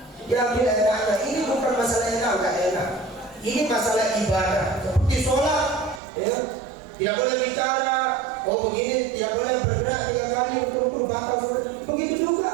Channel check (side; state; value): left; drops out; at 6.0 s